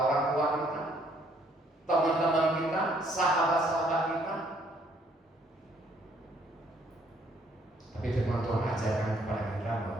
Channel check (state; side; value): normal; both; correlation 0.65